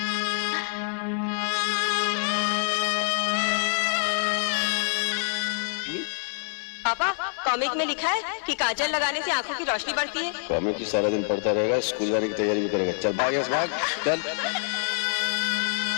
पापा, कॉमिक में लिखा है कि काजल लगाने से आंखों की रोशनी बढ़ती है। कॉमिक की सारा दिन पढ़ता रहेगा, स्कूल जाने की तैयारी भी करेगा। चल भाग यहाँ से, भाग चल।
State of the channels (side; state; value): right; silent; digital silence